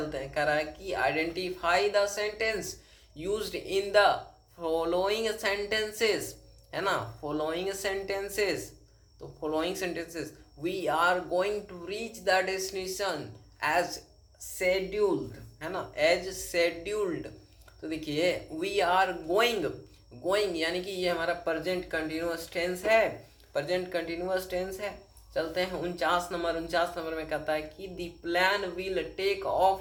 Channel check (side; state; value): both; identical; correlation 1.00